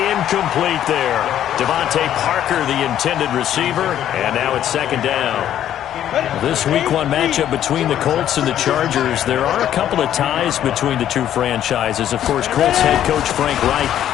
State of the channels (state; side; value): quieter; right; 11.0 dB